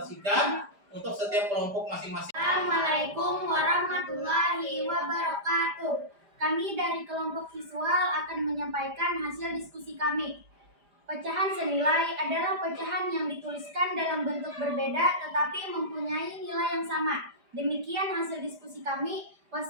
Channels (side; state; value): left; late; 5.0 ms